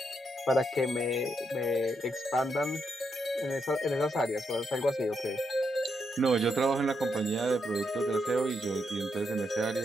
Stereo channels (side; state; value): both; normal; correlation 0.80